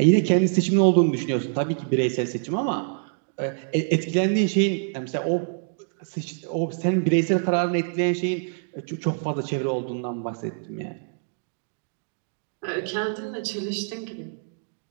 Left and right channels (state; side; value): silent; left; digital silence